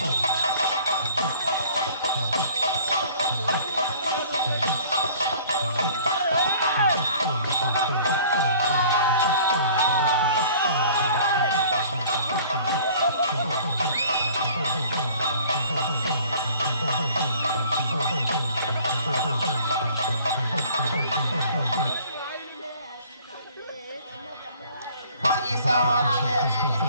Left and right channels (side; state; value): both; inverted; correlation -0.51